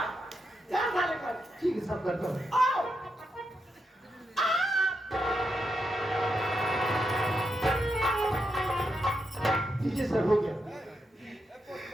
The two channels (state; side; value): normal; both; correlation 0.84